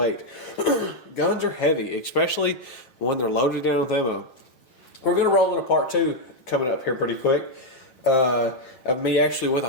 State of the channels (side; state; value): right; late; 7.8 ms